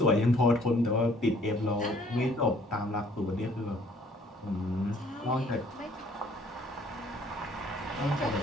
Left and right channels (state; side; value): normal; both; correlation 0.59